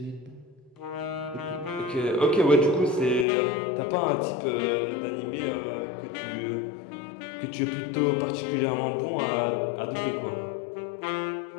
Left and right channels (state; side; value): drops out; right; at 3.2 s